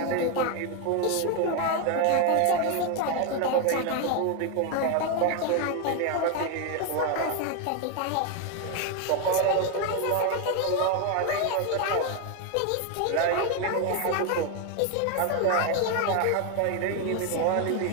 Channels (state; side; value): different; both; correlation 0.01